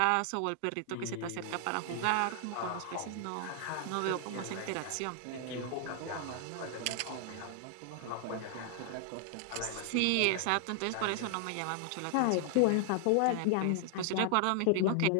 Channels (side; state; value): both; different; correlation 0.00